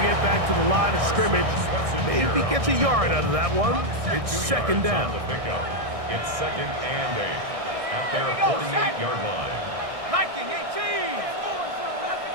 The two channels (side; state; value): left; late; 1.6 ms